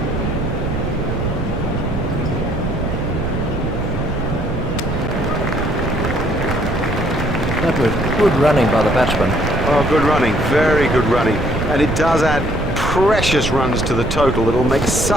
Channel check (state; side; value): noise; right; rumble, 5 dB below the sound